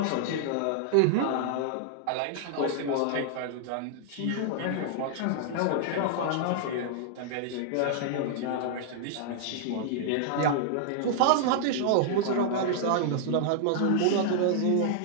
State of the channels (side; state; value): both; different; correlation -0.01